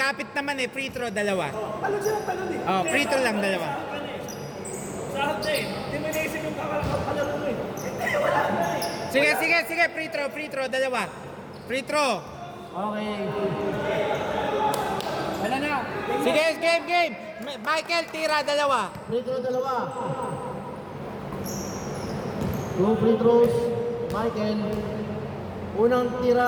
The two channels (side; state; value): both; identical; correlation 1.00